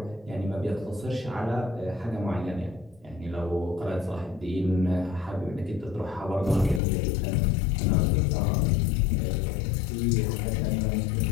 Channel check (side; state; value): right; drops out; at 6.8 s